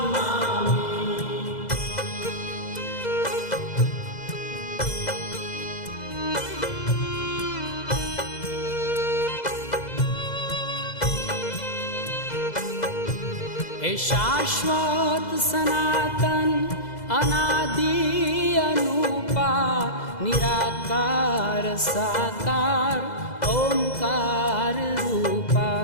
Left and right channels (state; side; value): late; right; 2.0 ms